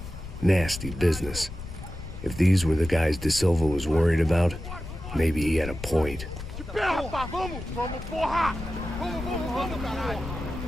Nasty business. If these were the guys De Silva was worried about, maybe he had a point.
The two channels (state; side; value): noise; left; rumble, 10 dB below the sound